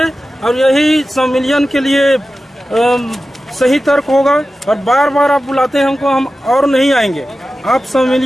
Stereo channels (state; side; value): normal; both; correlation 0.94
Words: और यही संविलियन के लिए सही तर्क होगा। और बार बार आप बुलाते हैं हमको, हम और नहीं आएंगे। आप